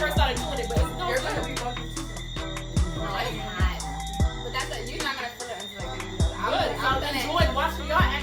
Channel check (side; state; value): both; identical; correlation 1.00